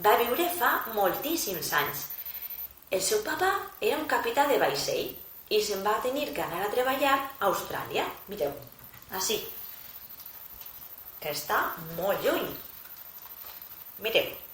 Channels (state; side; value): identical; both; correlation 1.00